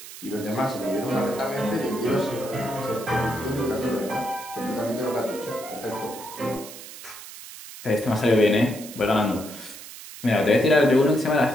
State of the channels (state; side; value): noise; right; hiss, 14 dB below the sound